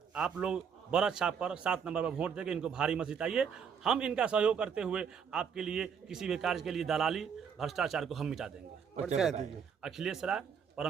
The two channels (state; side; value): quieter; left; 7.0 dB